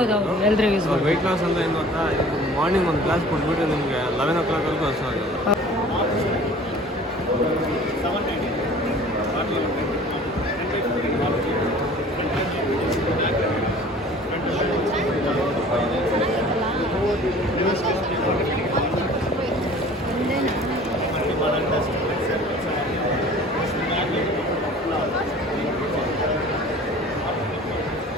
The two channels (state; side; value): normal; both; correlation 0.46